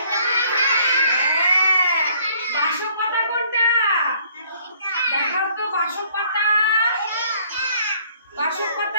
বাসক পাতা কোনটা? দেখাও তো বাসক পাতা। বাসক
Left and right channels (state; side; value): inverted; both; correlation -0.61